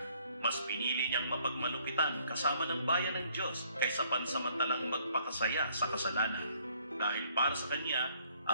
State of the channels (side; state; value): both; inverted; correlation -0.64